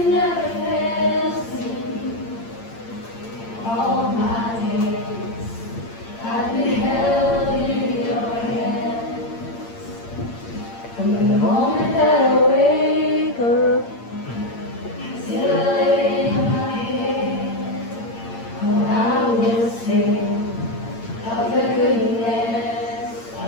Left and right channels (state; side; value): late; right; 8.7 ms